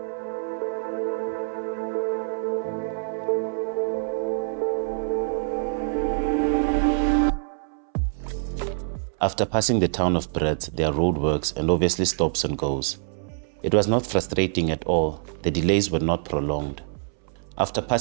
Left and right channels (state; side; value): silent; left; 61 dB below the other